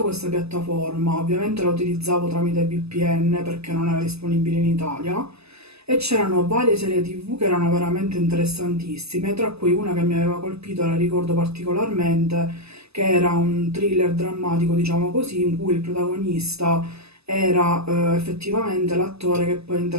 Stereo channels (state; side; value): late; left; 0.79 ms